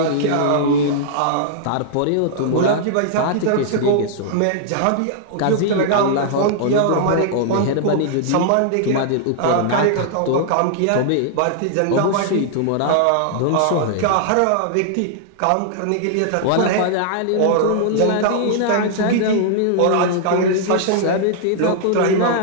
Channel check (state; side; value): different; both; correlation -0.01